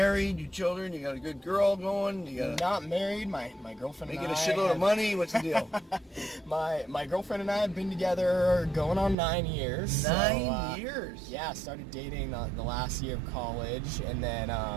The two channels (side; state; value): left; drops out; at 9.2 s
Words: you children, you got a good girl going, you got Not married. My girlfriend and I... making a shitload of money. What's the deal? My girlfriend and I have been together going on 9 years. 9 years? Yeah, started dating the last year of college, and then...